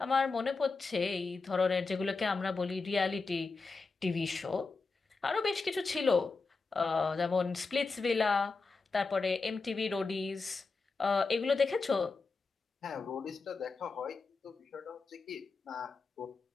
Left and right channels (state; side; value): quieter; right; 4.2 dB